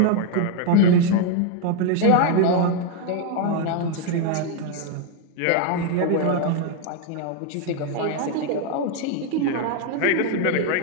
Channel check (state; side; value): different; both; correlation 0.01